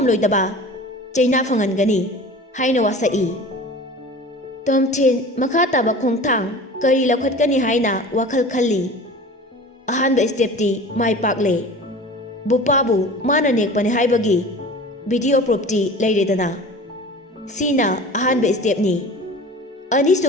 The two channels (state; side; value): normal; both; correlation 0.39